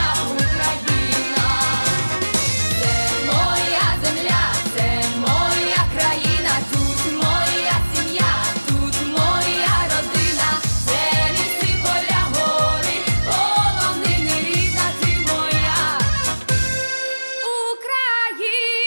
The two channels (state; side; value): inverted; both; correlation -1.00